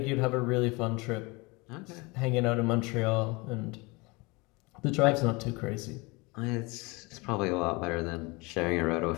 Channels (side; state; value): right; quieter; 26.0 dB